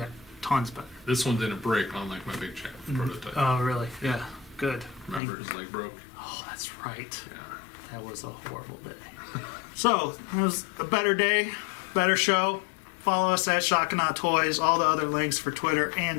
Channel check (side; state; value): right; drops out; at 5.2 s